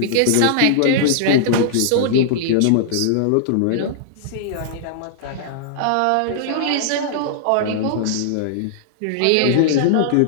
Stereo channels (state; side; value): different; both; correlation -0.01